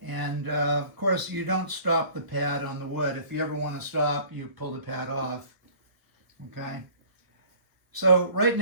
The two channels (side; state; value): left; late; 1.3 ms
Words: And of course, you don't stop the pad on the wood. If you ever want to stop, you pull the pad off. Okay. So right